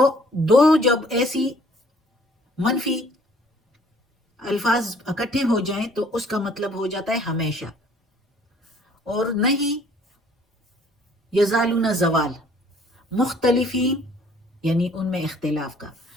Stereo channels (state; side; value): normal; both; correlation 0.58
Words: دو جب ایسی منفی الفاظ اکٹھے ہو جائیں تو اس کا مطلب ہو جاتا ہے ہمیشہ، اور نہیں یزالون زوال، مختلفین یعنی ان میں اختلاف کا۔